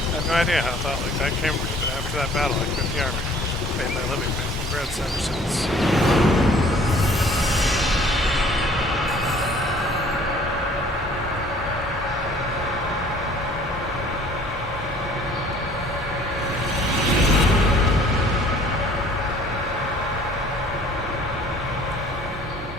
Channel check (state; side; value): normal; both; correlation 0.54